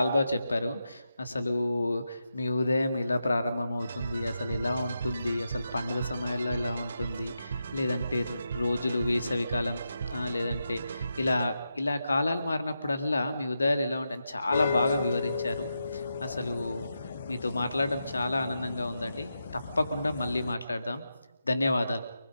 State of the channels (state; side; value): inverted; both; correlation -0.87